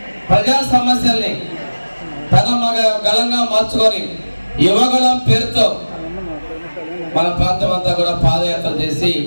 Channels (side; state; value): both; inverted; correlation -1.00